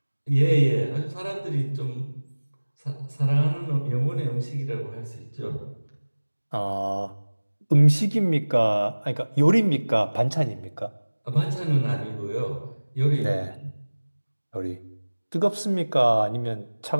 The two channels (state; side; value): inverted; both; correlation -1.00